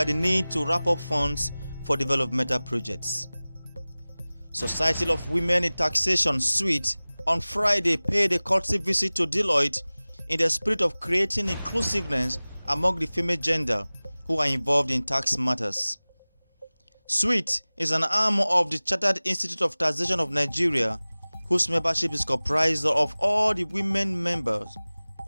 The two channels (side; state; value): both; inverted; correlation -0.99